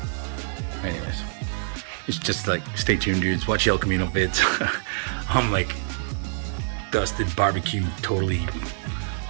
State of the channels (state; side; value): silent; left; digital silence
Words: Anyways, it's just like, stay tuned, dudes. Watch El Camino vids. I'm like dusted, barbecue, totally